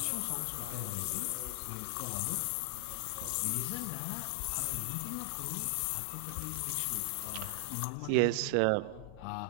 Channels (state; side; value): different; both; correlation 0.00